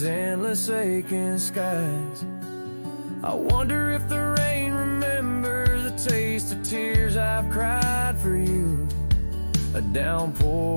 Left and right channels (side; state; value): both; inverted; correlation -1.00